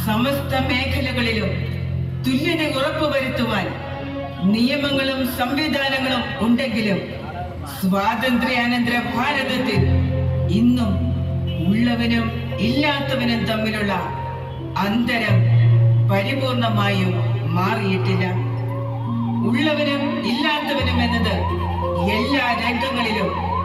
സമസ്ത മേഖലകളിലും തുല്യത ഉറപ്പുവരുത്തുവാൻ നിയമങ്ങളും സംവിധാനങ്ങളും ഉണ്ടെങ്കിലും സ്വാതന്ത്ര്യാനന്തര ഭാരതത്തിൽ ഇന്നും ഉള്ളവനും ഇല്ലാത്തവനും തമ്മിലുള്ള അന്തരം പരിപൂർണമായും മാറിയിട്ടില്ല. ഉള്ളവനും ഇല്ലാത്തവനും എന്നത് എല്ലാ രംഗങ്ങളിലും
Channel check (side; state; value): both; identical; correlation 1.00